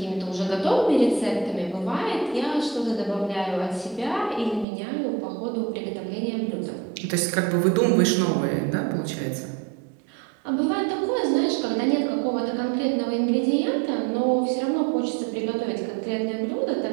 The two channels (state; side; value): drops out; left; at 4.7 s